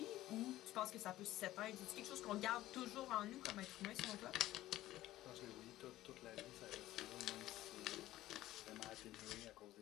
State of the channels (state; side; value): quieter; right; 15.2 dB